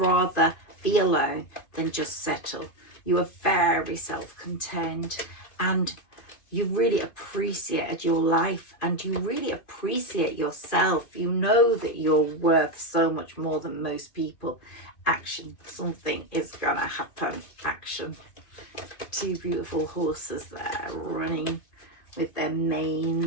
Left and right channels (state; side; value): late; right; 2.1 ms